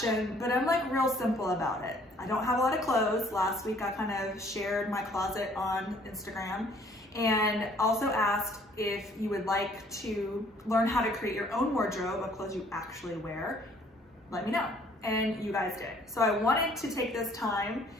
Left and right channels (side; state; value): both; normal; correlation 0.59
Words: but I'm like real simple about it. I don't have a lot of clothes. Last week I kind of shared my closet on Instagram and also asked if you would like to learn how to create your own wardrobe of clothes you actually wear. Let me know. And you guys did. So I wanted to take this time